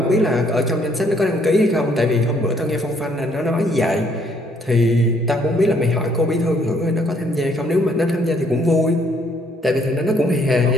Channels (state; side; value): normal; both; correlation 0.66